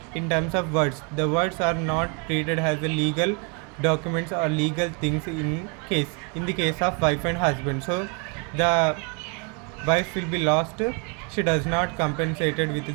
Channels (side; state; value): left; quieter; 33.5 dB